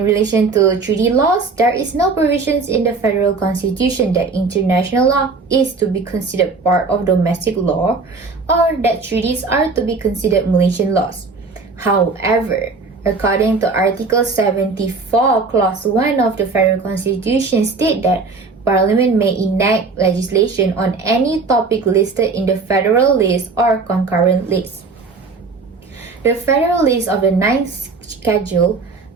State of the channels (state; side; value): quieter; left; 4.1 dB